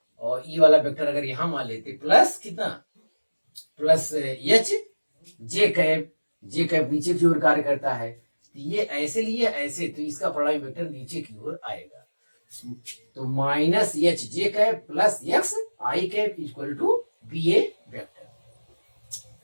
और ये वाला वेक्टर अगर यहां मान लेते प्लस कितना, प्लस एच जे कैप, जे कैप नीचे की ओर कार्य करता है, तो ये ऐसे लिए ऐसे, तो इसका परिणामी वेक्टर नीचे की ओर आएगा। तो minus H J cap plus x I cap equal to b a vector.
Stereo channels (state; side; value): inverted; both; correlation -1.00